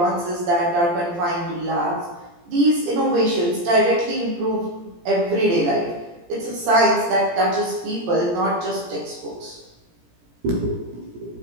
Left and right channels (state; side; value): late; left; 17 ms